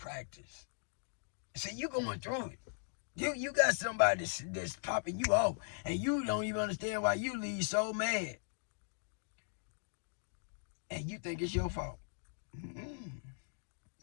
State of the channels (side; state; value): right; silent; digital silence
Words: See, you going through it. You got somebody that's popping you off, and you don't even understand why you leave so mad. And you think it's your fault.